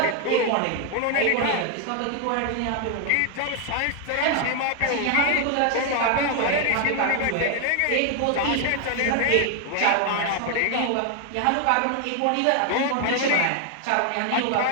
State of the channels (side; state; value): both; different; correlation 0.00